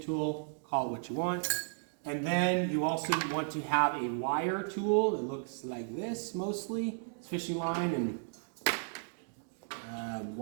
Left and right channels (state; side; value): silent; left; digital silence